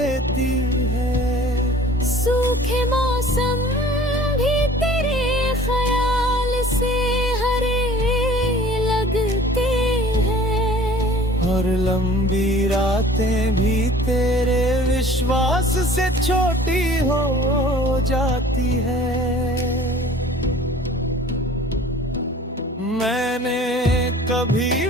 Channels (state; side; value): normal; both; correlation 0.48